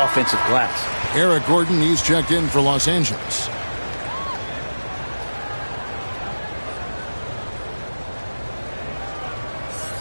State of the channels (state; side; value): inverted; both; correlation -1.00